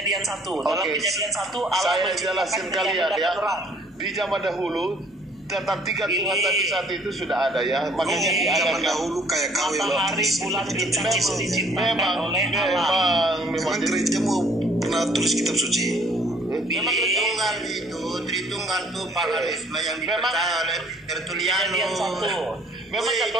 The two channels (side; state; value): both; normal; correlation 0.59